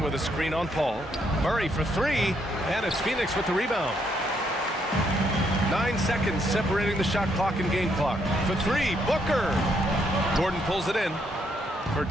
a screen on Paul. Murray for three, and it's Phoenix with the rebound. 9 seconds separating the shot clock and game clock. For three, Booker. Gordon pulls it in. For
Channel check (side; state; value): both; normal; correlation 0.74